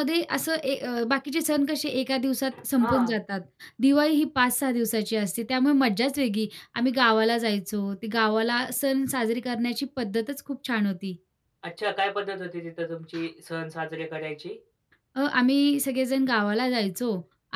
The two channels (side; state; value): both; identical; correlation 1.00